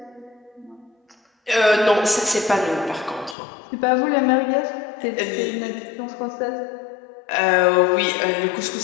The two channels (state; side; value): drops out; right; at 3.4 s